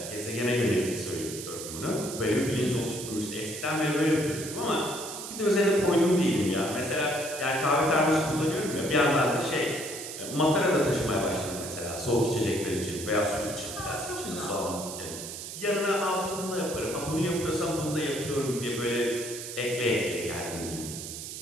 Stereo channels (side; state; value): right; noise; hiss, 9 dB below the sound